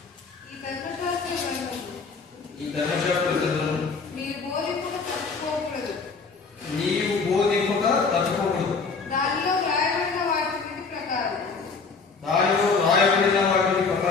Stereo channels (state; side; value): quieter; right; 4.7 dB